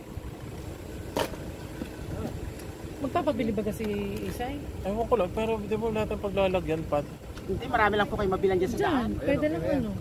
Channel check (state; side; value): identical; both; correlation 1.00